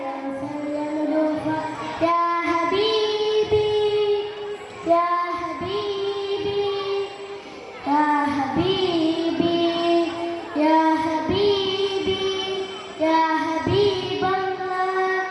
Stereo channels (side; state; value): both; identical; correlation 1.00